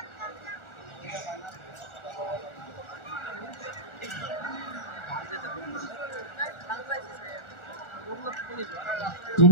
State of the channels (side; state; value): right; late; 1.4 ms